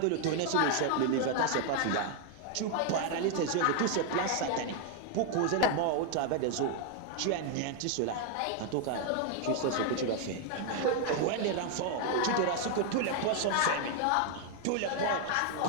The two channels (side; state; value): both; different; correlation 0.00